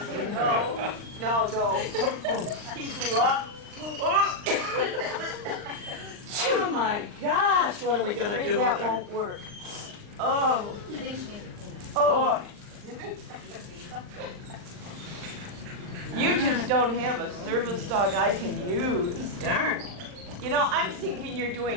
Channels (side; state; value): left; late; 39 ms